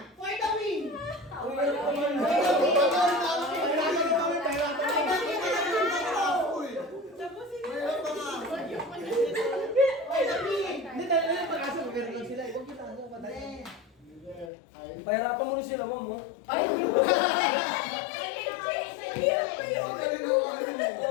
For the win. For the win. Pahirapan mo rin sila, ma'am, mo. Ay!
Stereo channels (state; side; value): drops out; right; at 14.5 s